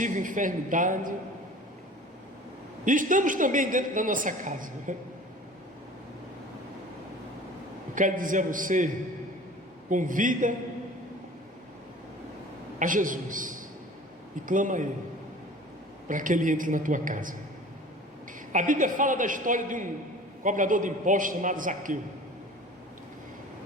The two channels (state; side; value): normal; both; correlation 0.43